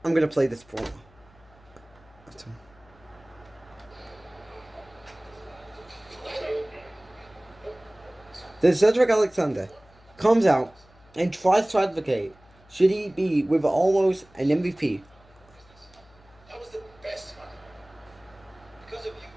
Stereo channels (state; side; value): noise; left; hum, 28 dB below the sound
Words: I'm going to play this promo. Then Cedric Alexander comes out and tries to advocate should he be with almost an MVP. That was the best one. Because of you,